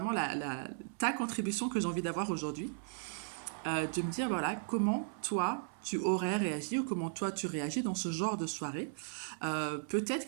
ta contribution que j'ai envie d'avoir aujourd'hui, de me dire voilà comment toi tu aurais réagi ou comment toi tu réagis dans ce genre de soirée. Peut-être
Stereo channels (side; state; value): left; silent; 54 dB below the other